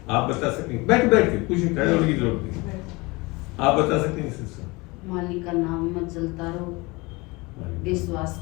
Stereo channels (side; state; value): right; quieter; 24.6 dB